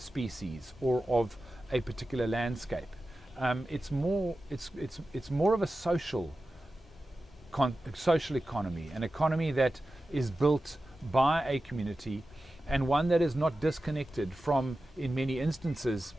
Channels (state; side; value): normal; both; correlation 0.94